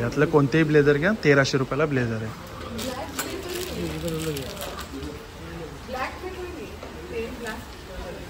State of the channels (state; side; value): identical; both; correlation 1.00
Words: यातलं कोणतेही ब्लेझर घ्या, 1300 रुपयाला ब्लेझर आहे.